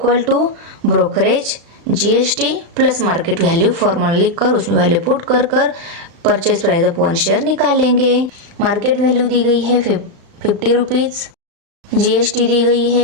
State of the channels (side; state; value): left; late; 35 ms